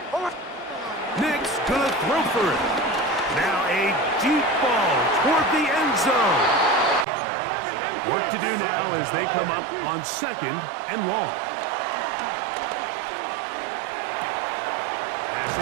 Nick's gonna throw for it. Now a deep ball toward the end zone. Work to do now as they come up on 2nd and long.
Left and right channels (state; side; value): drops out; left; at 7.1 s